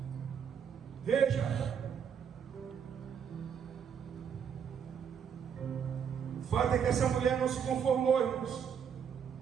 Veja, o fato é que essa mulher não se conformou, irmãos.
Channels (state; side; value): quieter; left; 7.6 dB